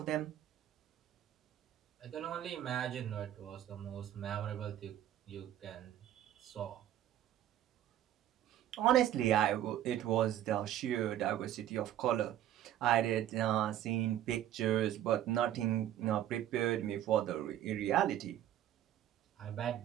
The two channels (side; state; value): left; quieter; 11.9 dB